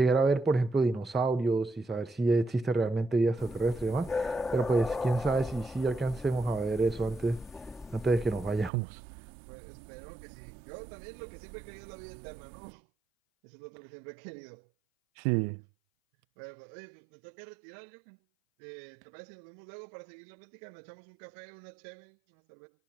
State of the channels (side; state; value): left; drops out; at 8.7 s